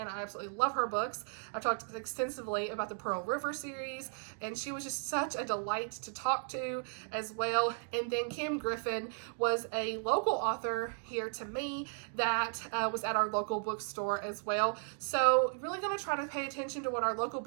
I absolutely love her books. I've talked extensively about the Pearl River series, and she was just such a delight to talk to as well. And then Kim Griffin was a local author here to me that was at our local bookstore as well. So really going to try to pay attention to what our local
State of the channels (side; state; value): left; silent; 54 dB below the other